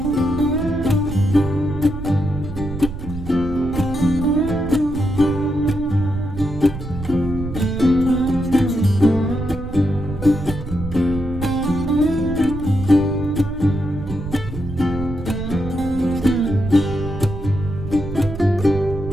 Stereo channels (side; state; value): right; noise; rumble, 9 dB below the sound